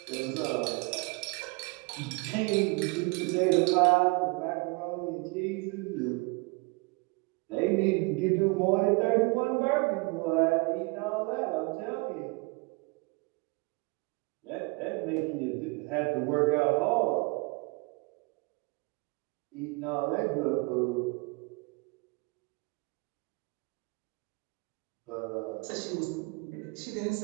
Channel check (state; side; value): quieter; left; 28.5 dB